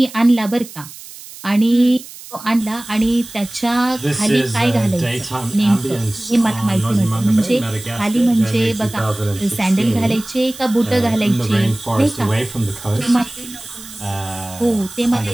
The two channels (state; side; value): noise; right; hiss, 16 dB below the sound